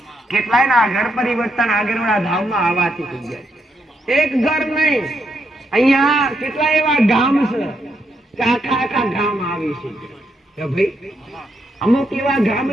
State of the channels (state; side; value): normal; both; correlation 0.79